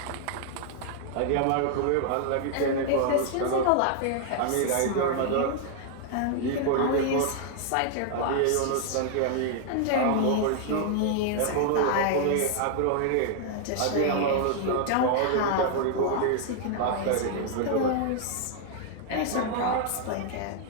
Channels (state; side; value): different; both; correlation 0.00